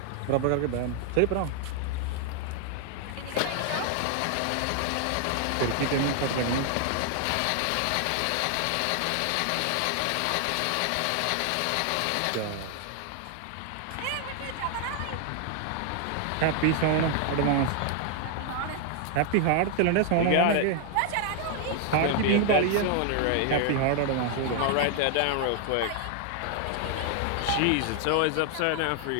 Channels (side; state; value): both; different; correlation 0.00